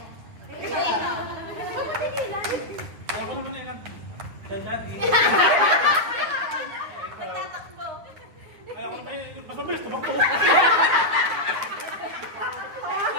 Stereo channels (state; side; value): late; left; 9.4 ms